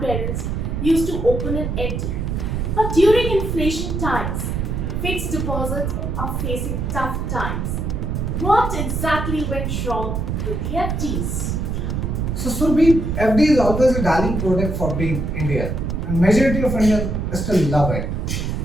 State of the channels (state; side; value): noise; right; rumble, 2 dB below the sound